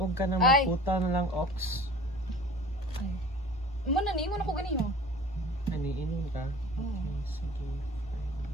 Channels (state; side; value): normal; both; correlation 0.43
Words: ka na Ay. maputa na lang ox. Ay. Imo na, niingon ako ganiyo. Ani inom ka? Oo. Okay, sige.